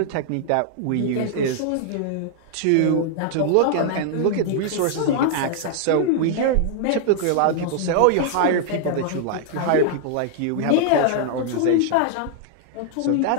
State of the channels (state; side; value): different; both; correlation -0.01